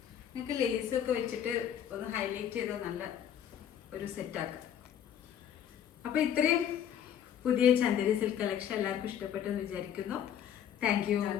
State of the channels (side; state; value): right; quieter; 9.5 dB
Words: നിങ്ങൾക്ക് ലേസൊക്കെ വെച്ചിട്ട് ഒന്ന് ഹൈലൈറ്റ് ചെയ്താൽ നല്ല ഒരു സെറ്റാക്കാം. അപ്പൊ ഇത്രയും പുതിയ ചന്ദേരി സിൽക്ക് കളക്ഷൻ എല്ലാവർക്കും ഇഷ്ടപ്പെട്ടെന്ന് വിചാരിക്കുന്നു. Thank you.